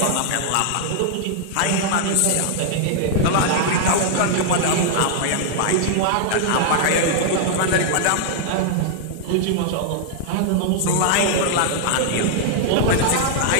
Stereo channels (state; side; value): different; both; correlation -0.01